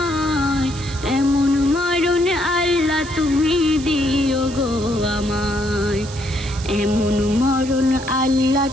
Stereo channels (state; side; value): noise; right; hiss, 15 dB below the sound